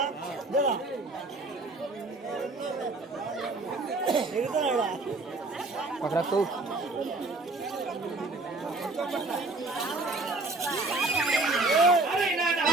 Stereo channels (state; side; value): quieter; left; 3.1 dB